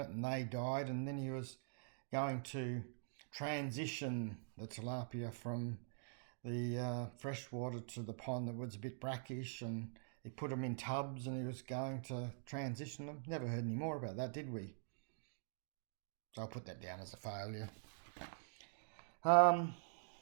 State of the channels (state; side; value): silent; left; digital silence